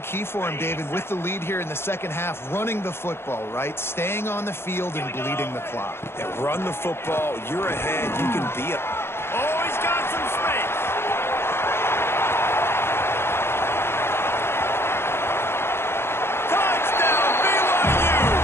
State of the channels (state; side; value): late; right; 0.12 ms